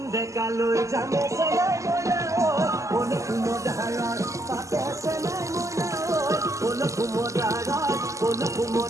ডেকালৈ যামে চেলাই মইনা কোন কুমদাৰত পাতে চেলাই মইনা কোন কুমদাৰৰ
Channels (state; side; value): late; left; 0.16 ms